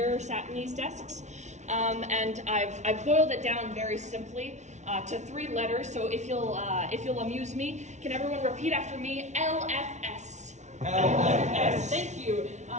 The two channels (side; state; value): left; late; 0.33 ms